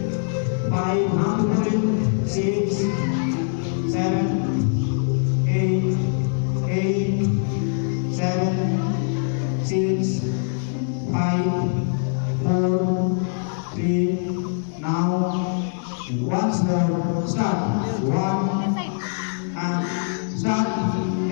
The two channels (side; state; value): right; silent; digital silence